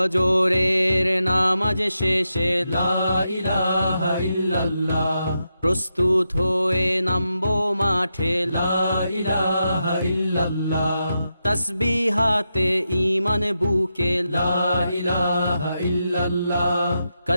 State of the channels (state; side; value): inverted; both; correlation -0.86